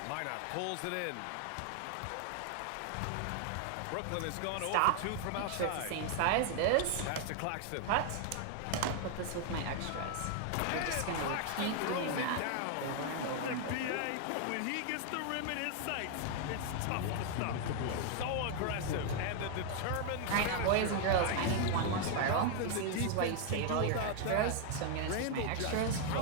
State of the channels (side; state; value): both; different; correlation 0.00